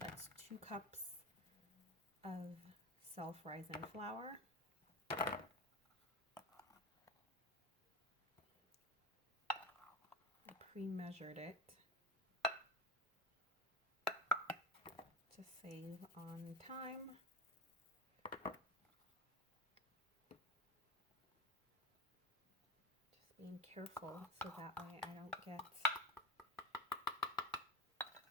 2 cups of self-rising flour. Pre-measured it to save on time. Just being careful so that way I don't get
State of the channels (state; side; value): normal; both; correlation 0.24